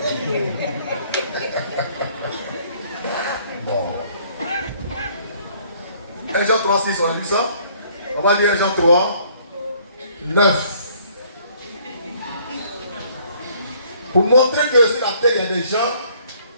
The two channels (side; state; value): both; inverted; correlation -0.61